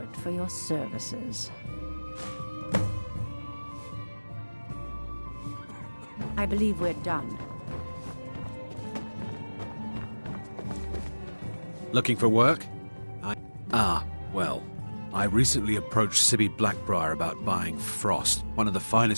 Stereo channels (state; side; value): inverted; both; correlation -1.00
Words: for your services. I believe we're done. Looking for work? Well, I recently approached Sibby Blackbriar about buying Frost, one of the